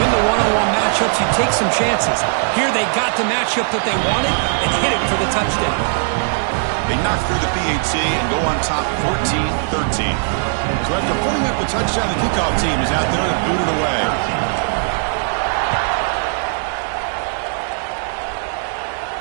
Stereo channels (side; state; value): left; silent; 62 dB below the other